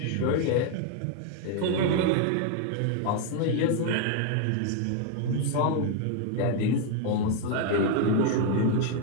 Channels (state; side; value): different; both; correlation 0.00